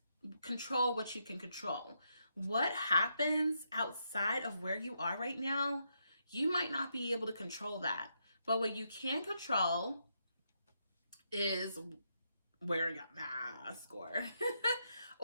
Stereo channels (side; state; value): both; inverted; correlation -0.80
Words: control what you can control. What happens outside of where you are right now, you might not be able to control that. But what you can control is wearing a mask, or